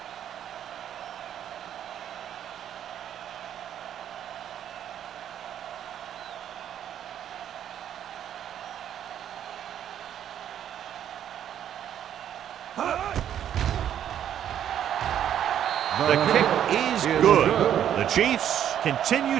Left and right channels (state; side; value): quieter; left; 10.1 dB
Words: The kick is good. The Chiefs continue